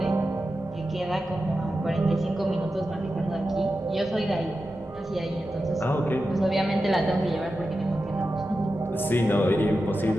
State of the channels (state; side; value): normal; both; correlation 0.91